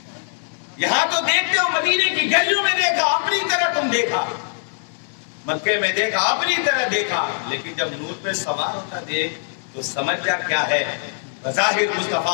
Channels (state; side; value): silent; right; 64 dB below the other